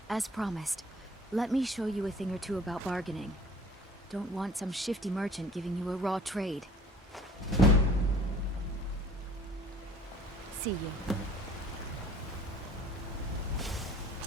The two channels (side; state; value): both; normal; correlation 0.50